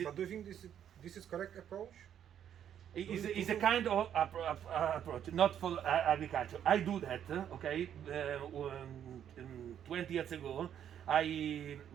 is But do you think this is correct approach? is a kind of approach, not for agriculture. I do that, okay. 20 years ago, I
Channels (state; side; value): quieter; left; 9.6 dB